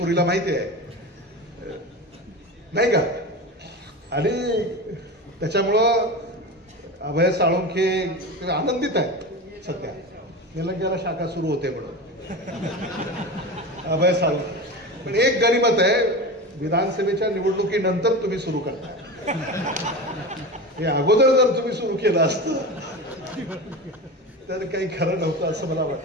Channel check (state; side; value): normal; both; correlation 0.27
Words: माहिती आहे नाही का. आणि त्याच्यामुळं अभय साळुंके आनंदित आहेत सध्या. निलंग्याला शाखा सुरू होते म्हणून अभय साळुंके. पण एक गनिमत आहे, विधानसभेच्या निवडणुकीनंतर तुम्ही सुरू करताय. हे अगोदर जर तुम्ही सुरू केलं असतं तर काही खरं नव्हतं असं मला